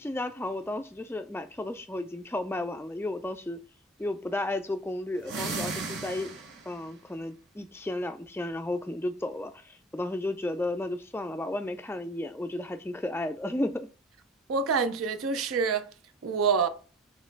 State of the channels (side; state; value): both; normal; correlation 0.46